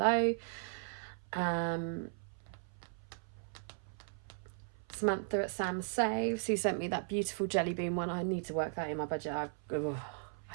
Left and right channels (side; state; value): left; silent; 53 dB below the other